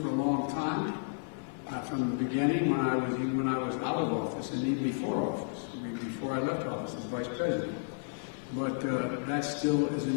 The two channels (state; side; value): silent; right; 56 dB below the other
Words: a long time, from the beginning, when I was out of office, and even before office, before I left office as vice president. But that still is an